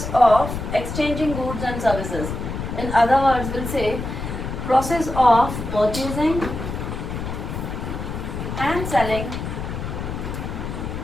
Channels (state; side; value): noise; left; rumble, 5 dB below the sound